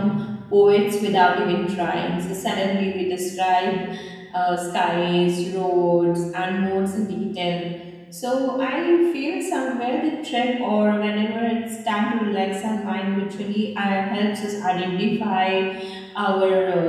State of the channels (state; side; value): identical; both; correlation 1.00